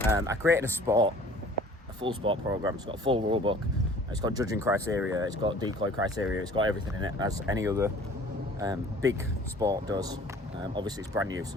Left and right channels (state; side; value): normal; both; correlation 0.50